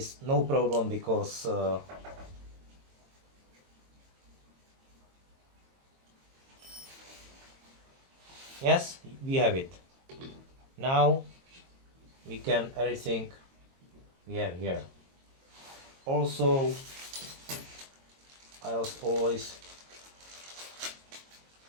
no problem because yes, we have it. Now we can everything we have here. Also, I was always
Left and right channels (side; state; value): left; late; 22 ms